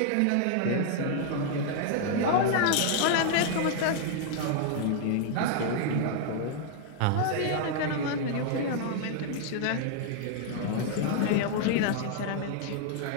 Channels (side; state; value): both; different; correlation 0.00